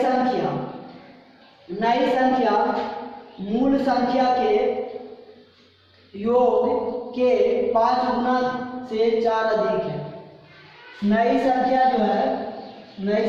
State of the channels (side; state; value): both; identical; correlation 1.00